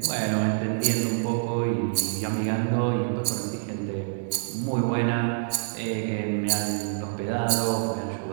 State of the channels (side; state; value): left; silent; digital silence